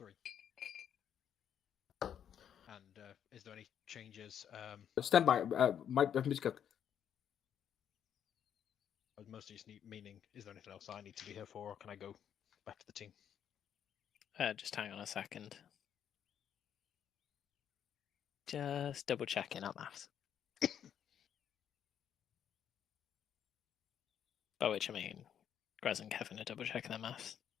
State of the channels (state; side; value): quieter; right; 9.1 dB